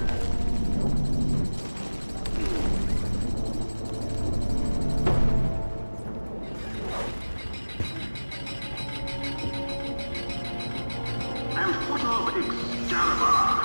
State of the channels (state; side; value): inverted; both; correlation -1.00